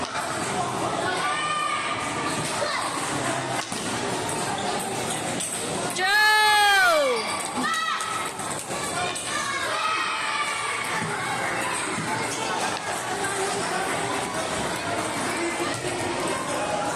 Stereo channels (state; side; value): identical; both; correlation 1.00